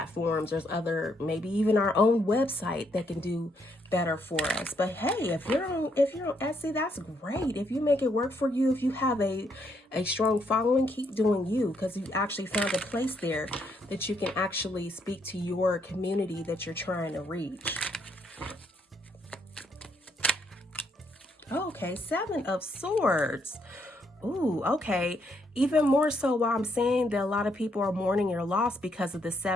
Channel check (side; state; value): both; normal; correlation 0.74